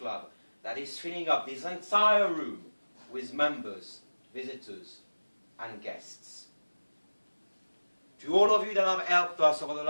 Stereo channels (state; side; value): inverted; both; correlation -1.00